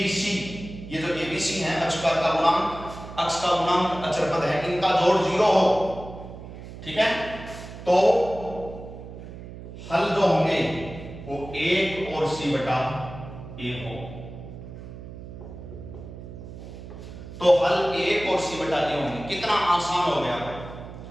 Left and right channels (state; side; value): noise; right; hum, 13 dB below the sound